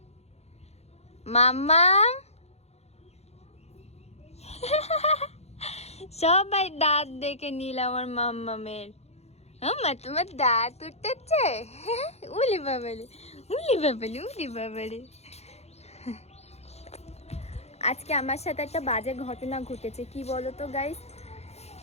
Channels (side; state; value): right; late; 0.31 ms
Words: মাম্মা সবাই দাঁত দেখে নিল আমার মাম্মামের। মাম্মা তোমার দাঁত উঠতেছে, উলি বাবালে, উলি বাবালে, উলি বাবালে। আজকে আমার সাথে একটা বাজে ঘটনা ঘটেছে। কি বলো তো গাইস,